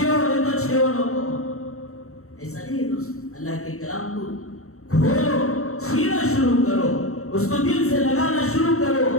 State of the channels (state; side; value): late; right; 0.64 ms